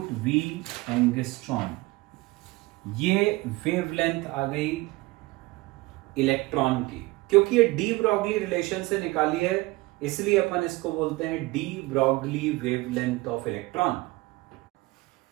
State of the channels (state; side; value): quieter; left; 21.4 dB